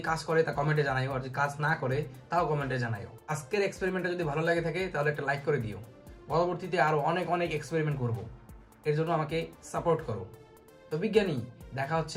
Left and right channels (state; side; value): identical; both; correlation 1.00